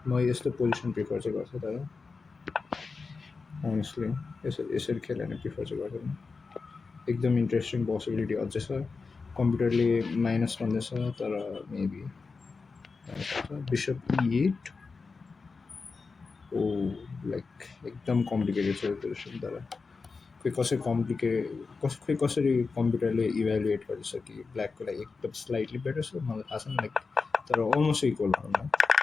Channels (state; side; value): quieter; right; 4.5 dB